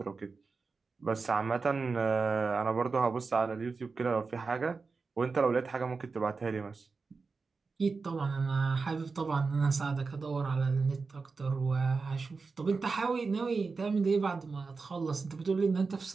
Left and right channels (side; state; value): left; quieter; 4.4 dB